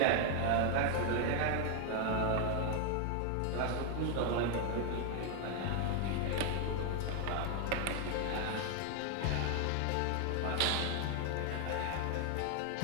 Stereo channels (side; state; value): both; different; correlation 0.00